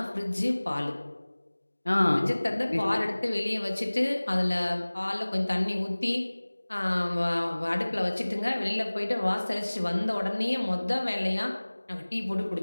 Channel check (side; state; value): both; inverted; correlation -1.00